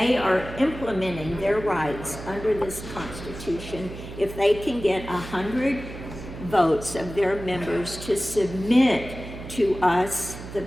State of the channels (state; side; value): noise; right; hum, 12 dB below the sound